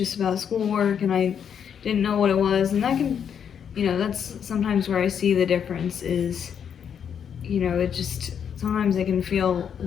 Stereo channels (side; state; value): right; quieter; 8.0 dB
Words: about schoolwork, and I didn't know what it was, and that can, that's sometimes where I see the difference is, it just, sometimes it can feel